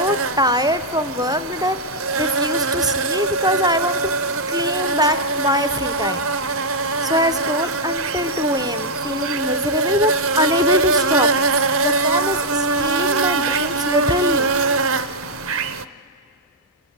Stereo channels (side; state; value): both; normal; correlation -0.03